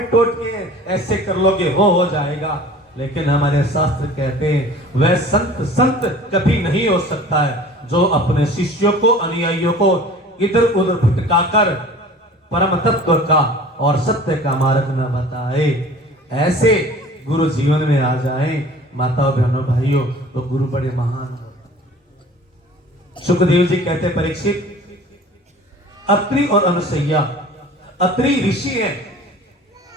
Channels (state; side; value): normal; both; correlation 0.45